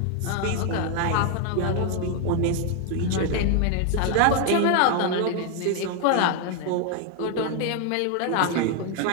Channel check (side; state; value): both; different; correlation 0.01